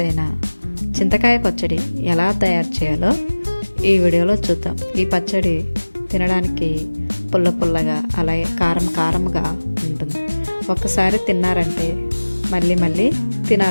అయిన చింతకాయ పచ్చడి ఎలా తయారు చేయాలో ఈ వీడియోలో చూద్దాం. ఈ పచ్చడి తినడానికి పుల్ల పుల్లగా అలాగే కారం కారంగా ఉంటుంది. ఒక్కసారి తిన్నారంటే మళ్ళీ మళ్ళీ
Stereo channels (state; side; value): inverted; both; correlation -1.00